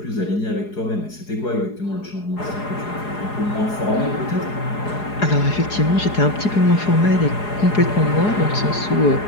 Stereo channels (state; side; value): late; right; 4.8 ms